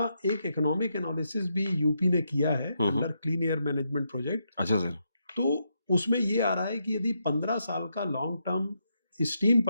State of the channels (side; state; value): both; inverted; correlation -0.81